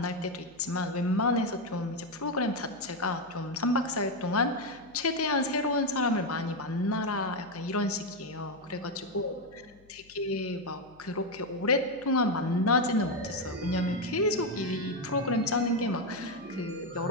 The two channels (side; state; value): left; noise; hum, 28 dB below the sound